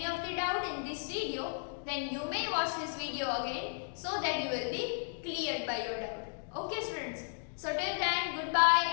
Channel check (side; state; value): right; silent; digital silence